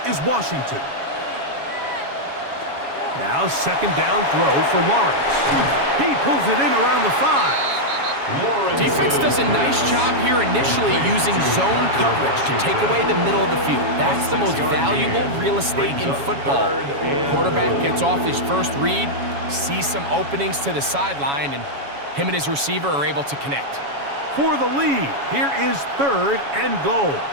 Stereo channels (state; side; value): late; left; 7.2 ms